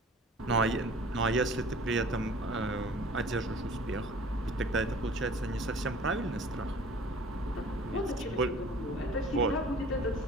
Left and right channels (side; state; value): both; normal; correlation 0.47